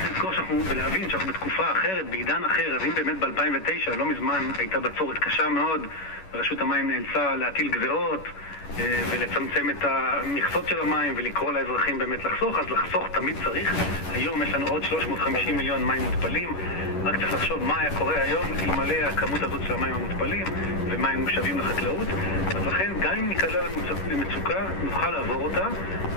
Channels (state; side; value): late; right; 11 ms